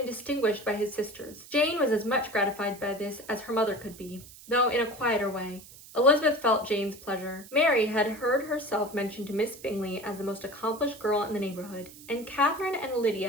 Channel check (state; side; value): noise; right; hiss, 19 dB below the sound